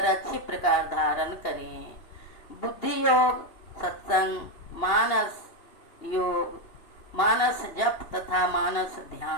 अच्छी प्रकार धारण करें। बुद्धि योग सत्संग, मानस योग मानस जप तथा मानस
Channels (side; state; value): right; late; 2.8 ms